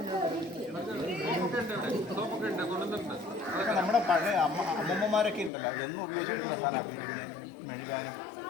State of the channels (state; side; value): drops out; right; at 5.5 s